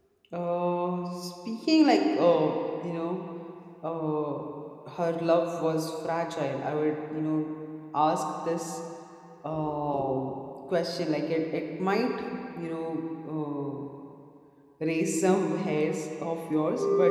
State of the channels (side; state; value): both; identical; correlation 1.00